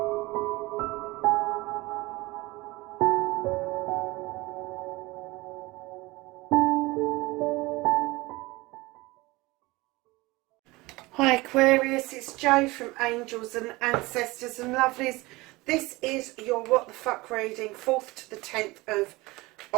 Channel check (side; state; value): left; quieter; 21.8 dB